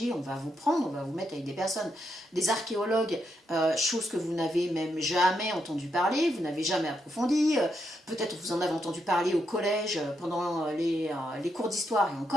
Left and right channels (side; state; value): both; normal; correlation 0.81